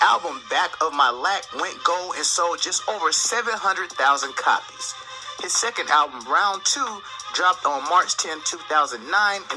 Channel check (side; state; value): both; identical; correlation 1.00